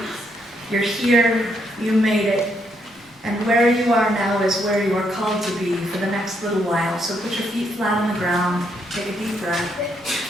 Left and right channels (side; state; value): both; normal; correlation 0.75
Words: You're here, you made it. And where you are now is where you are called to be for the next little while. So put your feet flat on the ground, take a deep breath.